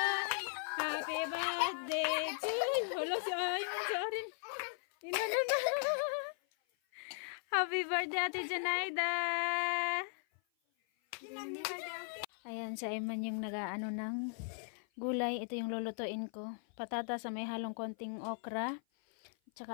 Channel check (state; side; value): silent; right; 53 dB below the other